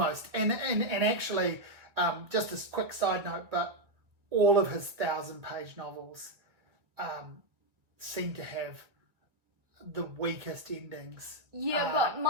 And actually, just a quick side note, but all of his 1,000-page novels seem to have the weakest endings. Yeah, but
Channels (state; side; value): late; left; 1.8 ms